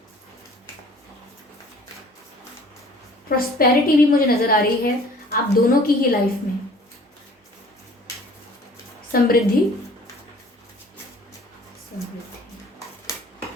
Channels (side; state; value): both; normal; correlation 0.51